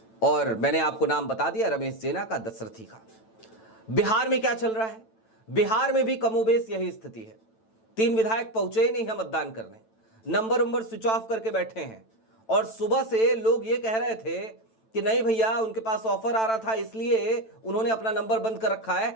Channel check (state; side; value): late; right; 9.0 ms